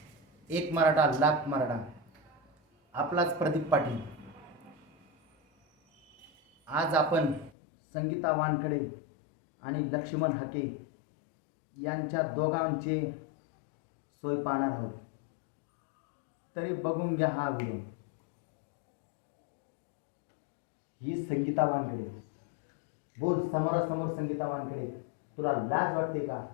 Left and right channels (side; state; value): right; drops out; at 7.5 s